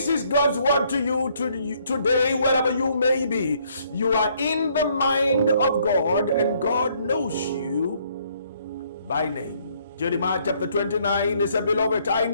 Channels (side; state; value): both; inverted; correlation -0.67